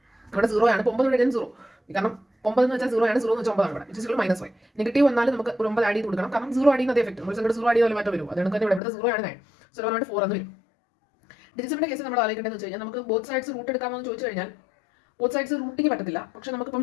ഇവിടെ 0 ആണ്. 9 ഇവിടെ 0, കാരണം 9 എന്ന് വെച്ചാൽ 0 ആണ്. 0 എന്ന് വെച്ചാൽ 9 ആണ്. ഇവിടെ -5 നെഗറ്റീവ് വന്നാലും നമുക്ക് ഒരു 9 ആഡ് ചെയ്ത് കൊടുക്കണം, കാരണം 0 ആഡ് ചെയ്യുന്ന അതേ എഫക്ട്. ഒരു സംഖ്യ 0 ആഡ് ചെയ്താൽ മാറ്റം വരും. അതുകൊണ്ട് തന്നെ ഇവിടെ 0 ആണ് 9. സോ 4 എന്ന് വരും. ഡിജിറ്റ്സിന്റെ കേസ് നമ്മൾ ആലോചിക്കേണ്ടതെന്ന് വെച്ച് കഴിഞ്ഞാൽ നമുക്ക് ബോത്ത് സൈഡ്സ് റൂട്ട് എടുക്കാമെന്ന് ചോദിച്ചു കഴിഞ്ഞാൽ ബോത്ത് സൈഡ്സ് റൂട്ടിങ് പറ്റത്തില്ല. പക്ഷേ നമുക്കിപ്പം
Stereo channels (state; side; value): drops out; right; at 8.8 s